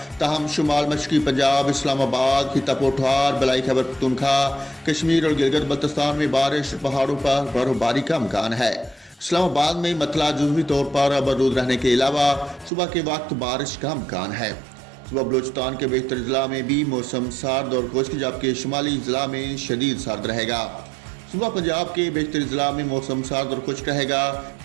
ताहम शुमाल मशरक़ी पंजाब, इस्लामाबाद, खिता पोठार, बलाई खैबर पख्तूनख्वा, कश्मीर और गिलगित बल्तिस्तान में बारिश, पहाड़ों पर बर्फबारी का इम्कान है। इस्लामाबाद में मतला जुज़वी तौर पर आबरूद रहने के अलावा सुबह के वक्त बारिश का इम्कान है। सुबह बलूचिस्तान के बेशतर ज़िला में भी मौसम सर्द और खुश्क, जबकि शुमाली ज़िला में शदीद सर्द रहेगा। सुबह पंजाब के बेशतर ज़िला में मौसम सर्द और खुश्क रहेगा,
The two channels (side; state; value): left; drops out; at 12.7 s